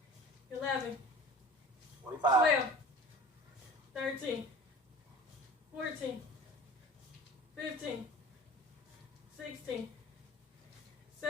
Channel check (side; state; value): both; normal; correlation 0.42